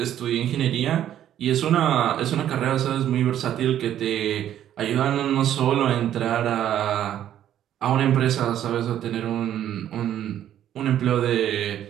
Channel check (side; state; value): left; quieter; 11.1 dB